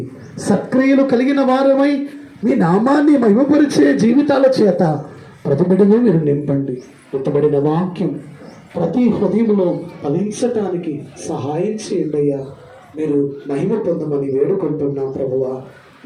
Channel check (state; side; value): identical; both; correlation 1.00